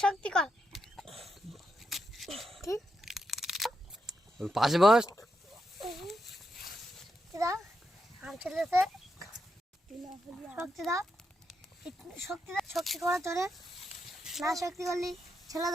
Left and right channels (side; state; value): both; normal; correlation 0.83